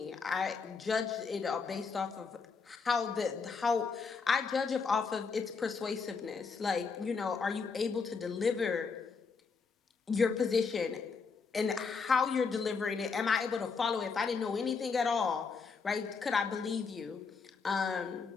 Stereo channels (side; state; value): right; quieter; 5.1 dB